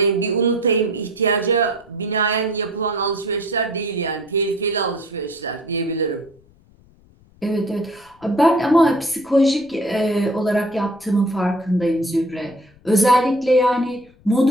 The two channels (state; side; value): noise; left; rumble, 29 dB below the sound